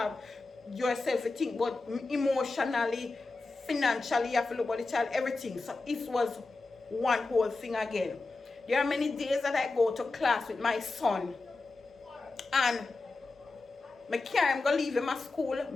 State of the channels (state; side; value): quieter; right; 3.5 dB